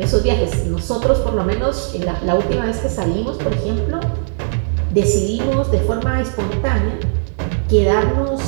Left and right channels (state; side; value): silent; left; digital silence